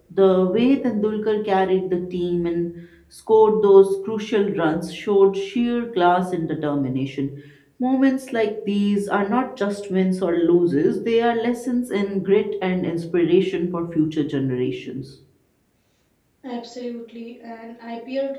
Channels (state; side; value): identical; both; correlation 1.00